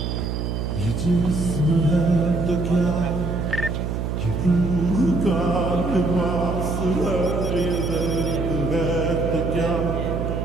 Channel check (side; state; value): right; noise; hum, 2 dB below the sound